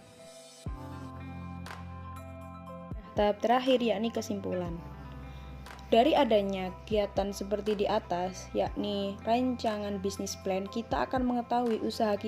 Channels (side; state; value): both; identical; correlation 1.00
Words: Tahap terakhir yakni kesimpulan. Dari adanya kegiatan seperti di atas, yakni rancangan bisnis plan, kita akan mengetahui usaha